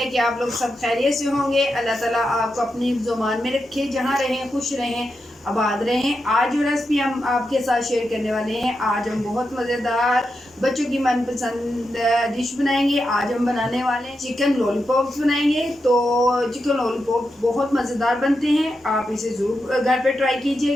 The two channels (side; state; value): both; normal; correlation 0.87